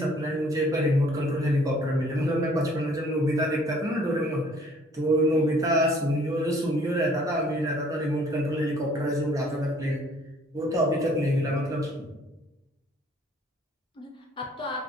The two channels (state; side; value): normal; both; correlation 0.57